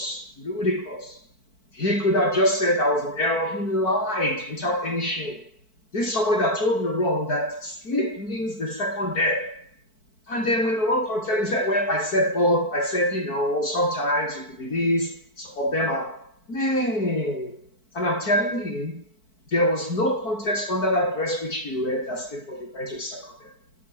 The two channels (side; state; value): right; late; 4.6 ms